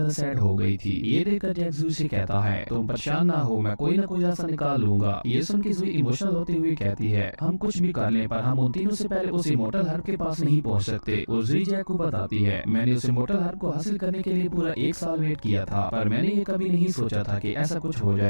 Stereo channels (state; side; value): inverted; both; correlation -1.00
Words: सैड हो गई थी। ये देखकर जैक जुई से कहता है तुम परेशान ना हो, मैं कोई ना कोई रास्ता निकाल लूंगा। ये सुन के जुई इमोशनल होते हुए कहती है हम कुछ भी कर लें पर हम उन तीनों से पहले उस इमोर्टल हार्प के पास नहीं पहुँच सकते। और जुई जैक को बताती है मैंने उस इमोर्टल हार्प को हासिल करने के लिए पूरा 1 साल वेट किया था, पर मैंने ये कभी नहीं सोचा था कि ऐसा कुछ हो